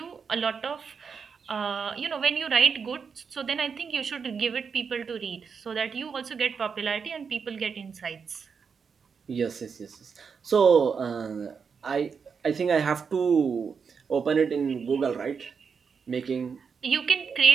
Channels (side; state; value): left; quieter; 6.0 dB